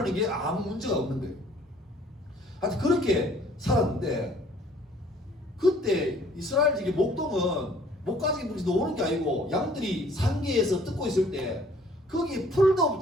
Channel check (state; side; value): normal; both; correlation 0.57